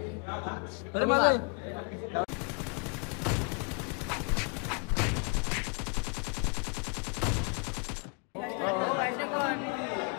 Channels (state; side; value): quieter; right; 36.0 dB